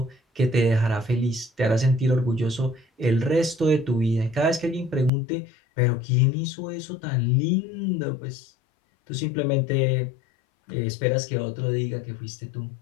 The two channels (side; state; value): right; drops out; at 5.1 s